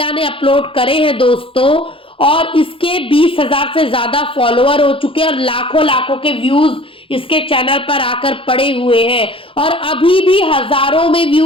ने अपलोड करे हैं दोस्तों, और इसके 20,000 से ज्यादा फॉलोअर हो चुके हैं और लाखों लाखों के व्यूज इसके चैनल पर आकर पड़े हुए हैं और अभी भी हजारों में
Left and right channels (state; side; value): late; right; 0.26 ms